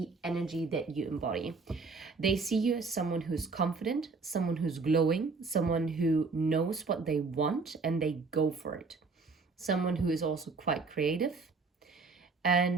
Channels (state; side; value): quieter; left; 4.3 dB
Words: energy that you embody. They see you as someone who's confident, someone who's glowing, someone who knows what they want and they go for it. Someone who is also quite creative